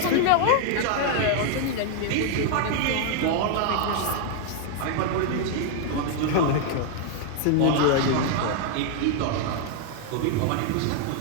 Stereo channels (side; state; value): both; different; correlation 0.00